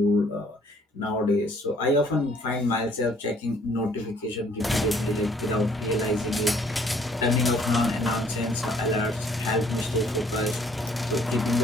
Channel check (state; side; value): normal; both; correlation 0.60